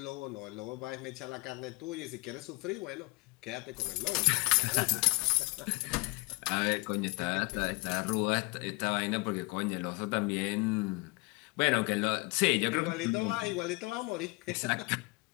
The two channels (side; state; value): right; quieter; 26.6 dB